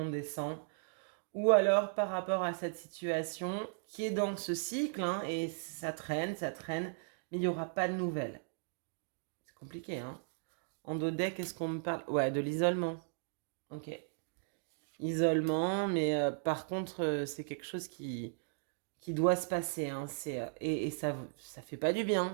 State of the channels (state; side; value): silent; left; digital silence